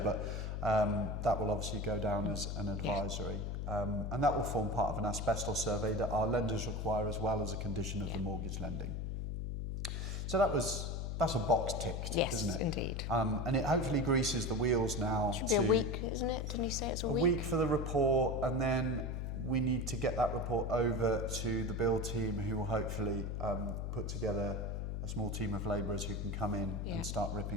But that will obviously go down as an advisory. And that will form part of an asbestos survey that our lenders require as well as a condition of the mortgage lending. So that's a box ticked, isn't it? Yes, indeed. And it hopefully greases the wheels now. It should be a week, isn't it? Didn't you say it's a week? A week for the report, and then we need to get that report over to the build team, who will hopefully put together a small team of labourers who can come in and start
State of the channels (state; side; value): noise; left; hum, 3 dB below the sound